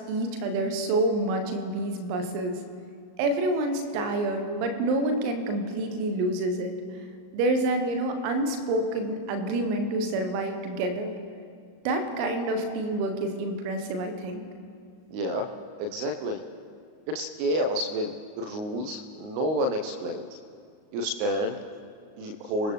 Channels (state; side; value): late; left; 38 ms